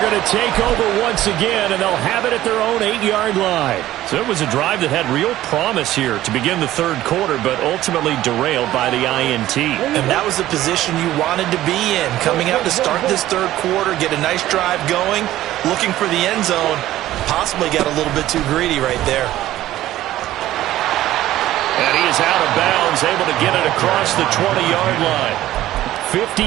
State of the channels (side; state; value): left; quieter; 14.4 dB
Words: to take over once again, and they'll have it at their own 8-yard line. So it was a drive that had real promise here to begin the third quarter, but ultimately derailed by the INT. And that was the position you wanted to be in. Coming out to start this third quarter, get a nice drive going, looking for the end zone. Possibly got a little bit too greedy right there. And he is out of bounds, able to get it across the 20-yard line. 50